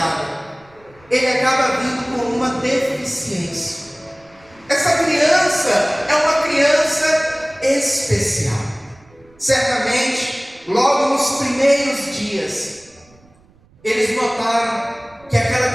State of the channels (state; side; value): noise; right; rumble, 30 dB below the sound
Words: ele acaba vindo com uma deficiência. Essa criança é uma criança especial. Certamente, logo nos primeiros dias, eles notaram que aquela